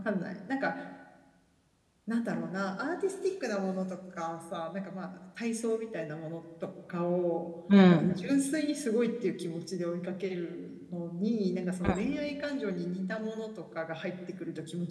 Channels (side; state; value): both; identical; correlation 1.00